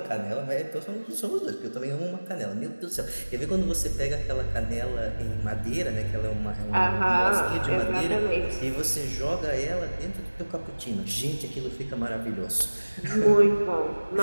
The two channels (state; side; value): inverted; both; correlation -1.00